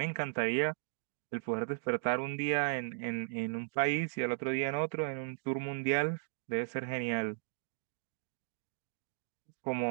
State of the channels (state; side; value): silent; left; digital silence